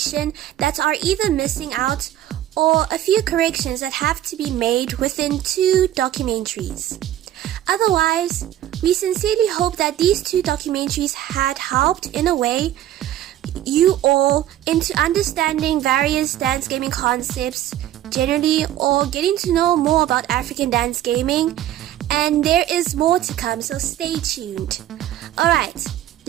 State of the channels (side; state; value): left; quieter; 12.7 dB